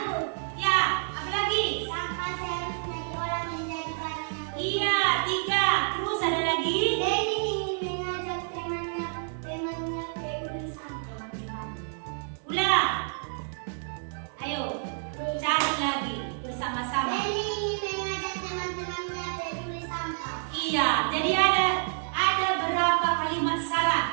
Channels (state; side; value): silent; left; digital silence